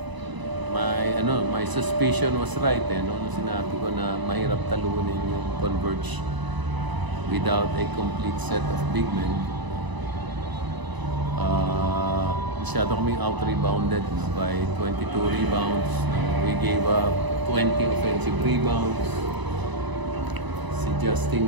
my suspicion was right no? Nung sinabi ko na mahirap talunin yung Converge without a complete set of big men. Masyado kaming out-rebounded by 22 rebounds. We gave up 20 offensive rebounds. Si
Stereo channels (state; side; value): late; left; 1.0 ms